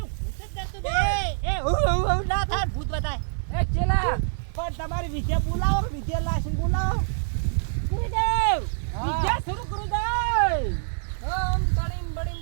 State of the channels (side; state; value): left; silent; digital silence